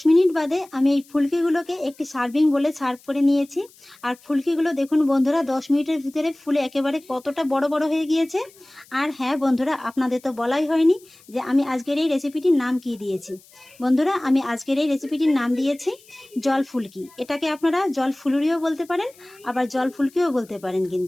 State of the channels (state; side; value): noise; left; hiss, 26 dB below the sound